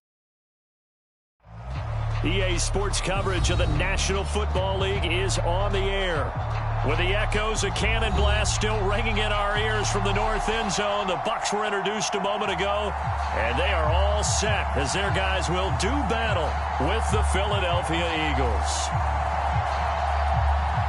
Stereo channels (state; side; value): identical; both; correlation 1.00